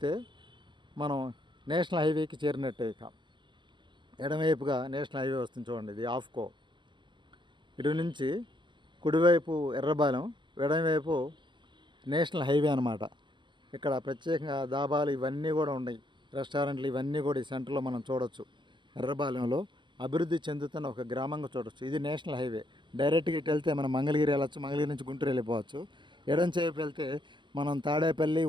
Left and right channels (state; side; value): late; left; 0.23 ms